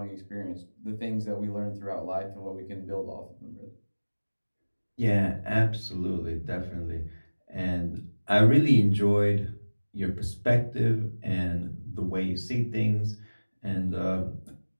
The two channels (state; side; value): inverted; both; correlation -1.00